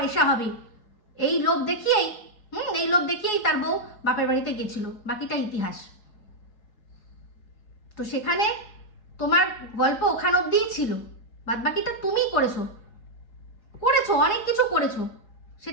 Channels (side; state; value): right; late; 4.8 ms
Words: হবে এই লোভ দেখিয়েই এই লোভ দেখিয়েই তার বউ বাপের বাড়িতে গেছিল, বাকিটা ইতিহাস। তো সেখানে তোমার গল্প ওখান অব্দিই ছিল, বাদ বাকিটা তুমিই করেছো, অনেক কিছু করেছো,